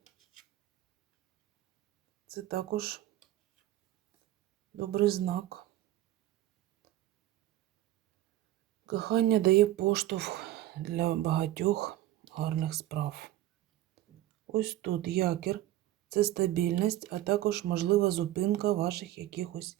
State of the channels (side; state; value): left; quieter; 14.2 dB